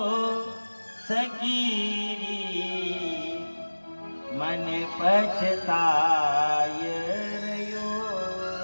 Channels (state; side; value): inverted; both; correlation -1.00